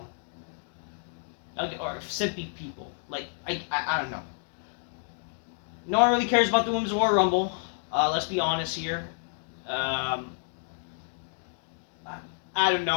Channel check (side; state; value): right; silent; digital silence